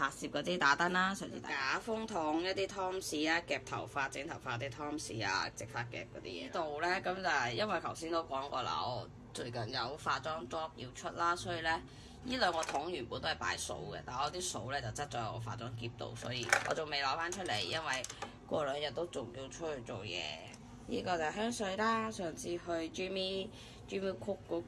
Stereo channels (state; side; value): identical; both; correlation 1.00